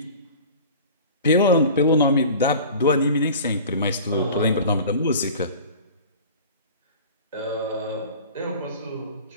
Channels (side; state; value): both; inverted; correlation -0.40